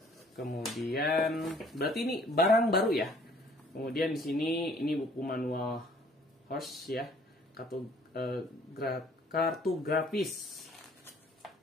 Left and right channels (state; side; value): normal; both; correlation 0.58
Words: Kemudian berarti ini barang baru ya. Kemudian di sini ini buku manual HORS ya, kartu grafis.